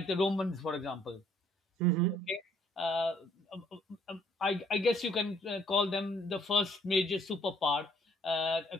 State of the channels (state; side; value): normal; both; correlation 0.64